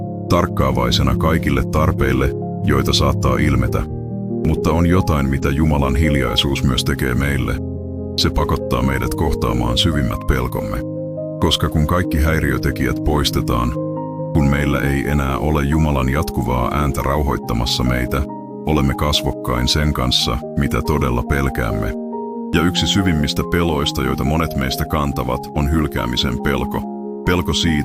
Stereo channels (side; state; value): both; identical; correlation 1.00